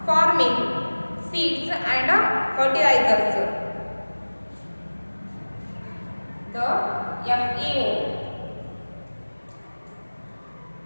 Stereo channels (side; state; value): both; inverted; correlation -1.00